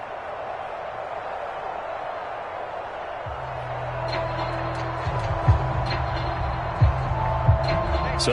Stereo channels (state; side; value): identical; both; correlation 1.00